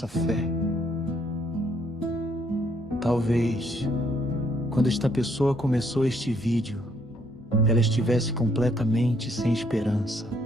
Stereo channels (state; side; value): normal; both; correlation 0.69